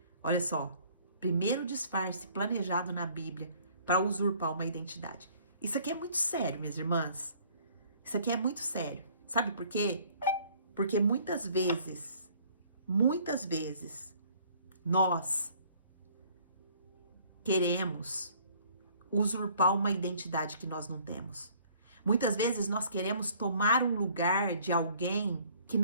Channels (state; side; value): inverted; both; correlation -0.57